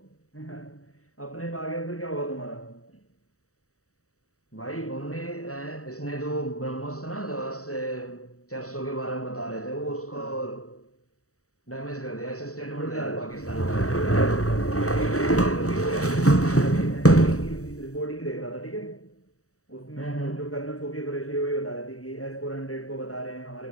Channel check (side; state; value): right; late; 0.65 ms